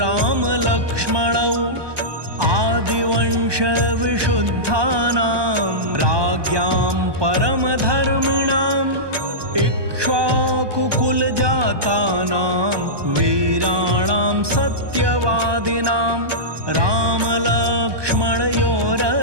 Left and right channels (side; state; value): left; late; 1.2 ms